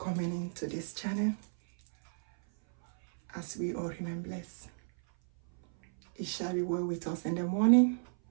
into this channel. As we all remain blessed. It shall be well with us in the morning.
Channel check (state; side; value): silent; left; 56 dB below the other